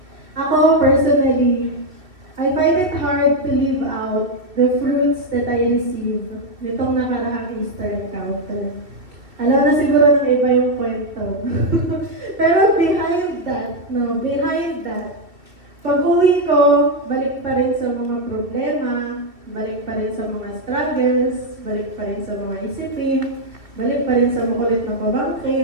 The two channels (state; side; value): late; left; 2.8 ms